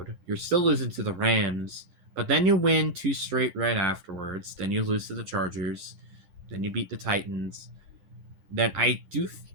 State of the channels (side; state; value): left; late; 11 ms